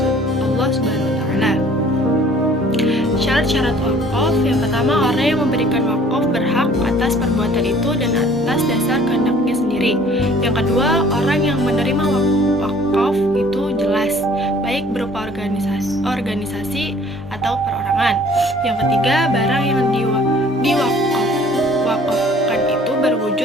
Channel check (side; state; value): both; normal; correlation 0.54